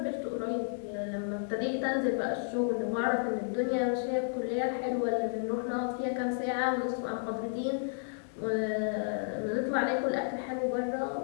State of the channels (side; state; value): right; silent; digital silence